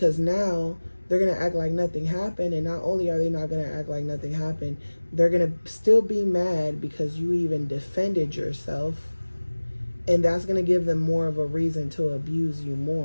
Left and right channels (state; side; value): inverted; both; correlation -1.00